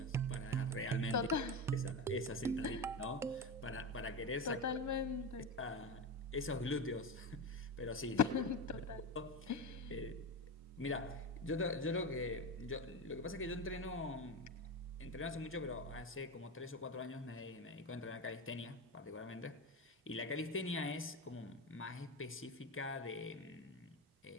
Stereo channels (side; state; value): both; normal; correlation 0.19